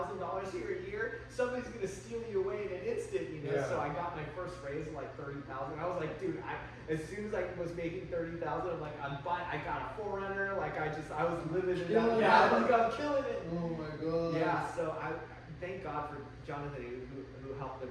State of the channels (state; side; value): identical; both; correlation 1.00